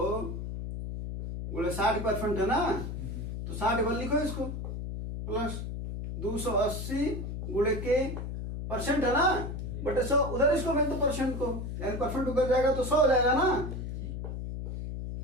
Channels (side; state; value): left; noise; hum, 5 dB below the sound